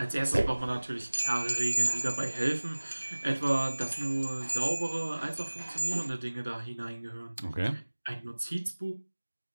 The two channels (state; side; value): inverted; both; correlation -1.00